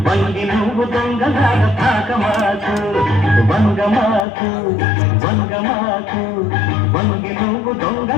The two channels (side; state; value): right; drops out; at 4.2 s